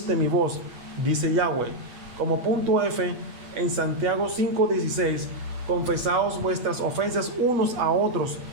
mi voz, dice Yahweh. Como punto F, en Santiago 5:16, confesaos vuestras ofensas unos a otros,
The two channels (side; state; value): left; late; 8.3 ms